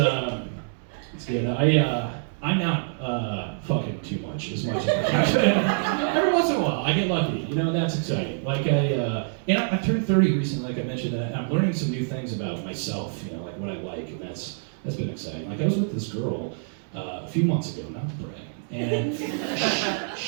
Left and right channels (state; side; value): silent; left; 61 dB below the other